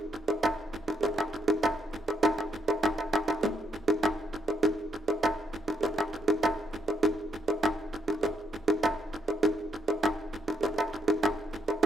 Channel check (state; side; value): normal; both; correlation 0.75